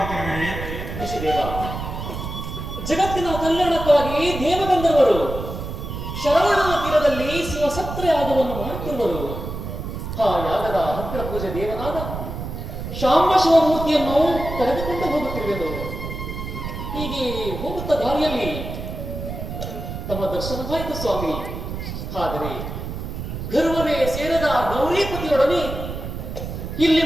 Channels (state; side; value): noise; right; rumble, 7 dB below the sound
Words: ಋಷಿದೇವ, ಜಗತ್ತಿನ ಕಲ್ಯಾಣಕ್ಕಾಗಿ ದೇವಗಂಧರ್ವರು ಶರವಣನ ತೀರದಲ್ಲಿ ಶಿವಸತ್ರ ಯಾಗವನ್ನು ಮಾಡುತ್ತಿರುವರು. ಆ ಯಾಗದ ಅಗ್ರ ಪೂಜೆ ದೇವನಾದ ಶಾಂಬ ಶಿವಮೂರ್ತಿಯನ್ನು ಕರೆದುಕೊಂಡು ಹೋಗುತ್ತಿರುವೆನು. ಹೀಗೆ ಹೋಗುತ್ತ ದಾರಿಯಲ್ಲಿ ತಮ್ಮ ದರ್ಶನವಾಯಿತು ಸ್ವಾಮಿ. ಆದರೆ ಗರ್ವವೇ ಸೇರದ ಗೌರೀಪತಿಯೊಡನೆ ಇಲ್ಲಿ